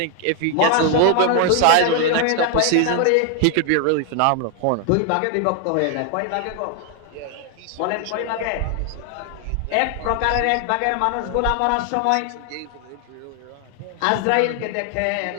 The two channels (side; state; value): both; different; correlation 0.00